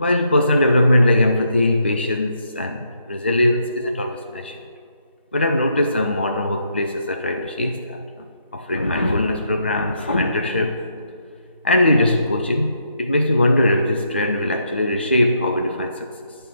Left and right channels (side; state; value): both; inverted; correlation -0.75